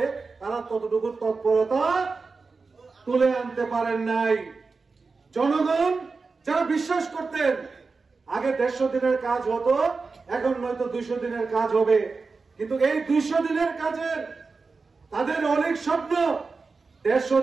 তারা ততটুকু তৎপরতা তুলে আনতে পারেন নাই। জনগণ যারা বিশ্বাস করতেন আগে 150 দিনের কাজ হতো, এখন নয়তো 200 দিনের কাজ হবে, কিন্তু এই 200 দিনের কাজের তাদের অনেক স্বপ্ন, 150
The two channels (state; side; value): quieter; left; 4.3 dB